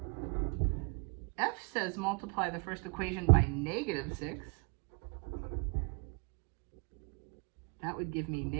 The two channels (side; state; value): left; quieter; 33.9 dB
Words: F says multiply the first equation by -6. That would give me